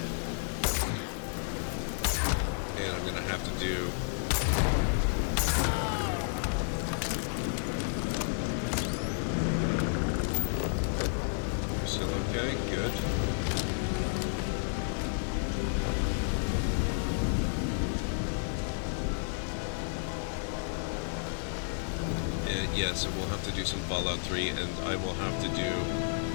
And I'm gonna have to do... Still okay? Good. Yeah, so we'll have to do some Fallout 3, and I will have to do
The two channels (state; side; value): silent; right; digital silence